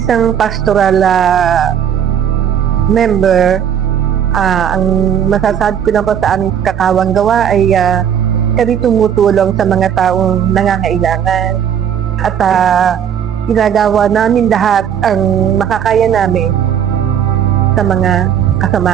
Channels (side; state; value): left; quieter; 8.8 dB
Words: pastoral member, ang masasabi ko lang po sa aming kakawang gawa ay kami tumutulong sa mga taong nangangailangan at ginagawa namin lahat ang makakaya namin sa mga